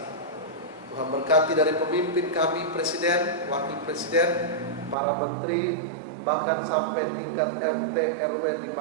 Tuhan berkati dari pemimpin kami, presiden, wakil presiden, para menteri, bahkan sampai tingkat RT, RW di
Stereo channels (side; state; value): left; drops out; at 5.0 s